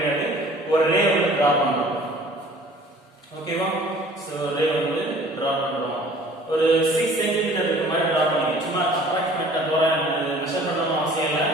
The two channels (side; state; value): both; normal; correlation 0.50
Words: ஒரு ரே வந்து டிரா பண்றோம். ஓகேவா? சோ ரே வந்து டிரா பண்றோம். ஒரு 6 cm இருக்க மாதிரி டிரா பண்ணுங்க. சும்மா அப்ராக்ஸிமேட்டா தோராயம் மெஷர் பண்ணனும் அவசியம் இல்ல.